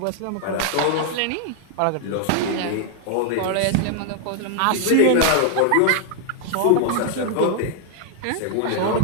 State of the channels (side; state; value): both; different; correlation 0.00